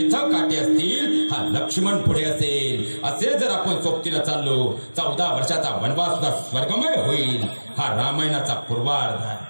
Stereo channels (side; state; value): both; inverted; correlation -1.00